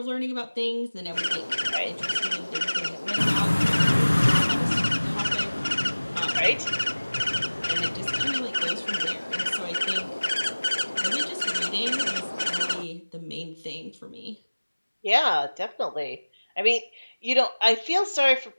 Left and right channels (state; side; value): inverted; both; correlation -1.00